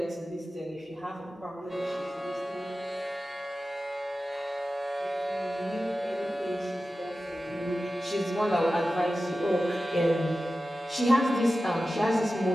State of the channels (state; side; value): normal; both; correlation 0.94